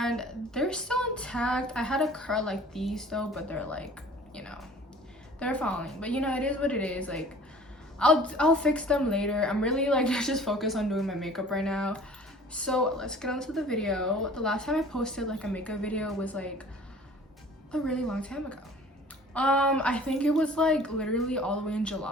they're still intact. I had a curl like these though, but they're like, they're falling, but it is what it is. Like I'll fix them later. I'm really like just focused on doing my makeup right now. So let's get on to the video. The last time I posted like a makeup video was like a really long time ago. I think it was like literally all the way in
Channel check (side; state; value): both; normal; correlation 0.48